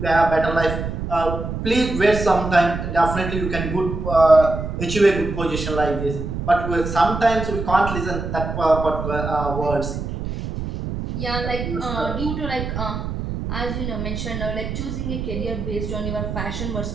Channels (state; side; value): noise; right; rumble, 5 dB below the sound